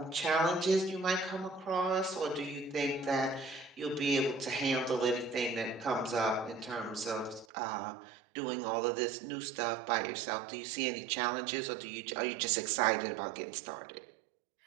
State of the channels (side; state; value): left; drops out; at 7.5 s